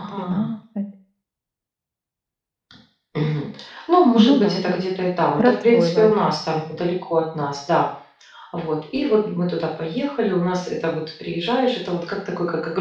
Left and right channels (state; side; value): identical; both; correlation 1.00